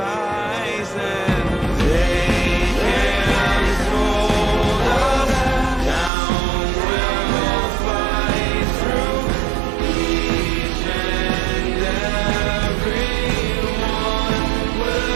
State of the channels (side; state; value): left; drops out; at 6.1 s